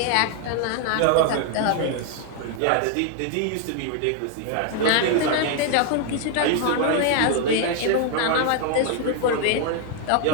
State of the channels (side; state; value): both; different; correlation 0.00